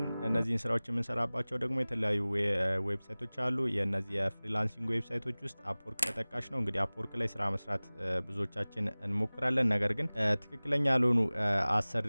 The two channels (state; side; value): inverted; both; correlation -0.99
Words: እነዚህን ስራዎች የምንሰራባቸው ደግሞ የተለያዩ ዌብሳይቶች አሉ። የእነዚህ የፍሪላንሲንግ ዌብሳይቶች ውስጥ አፕወርክ ተጠቃሽ ነው። እንግዲህ አፕወርክ ላይ ስራ መስራት ብዙዎቻችን እንሞክራለን። ነገር ግን ትክክለኛ ያልሆኑ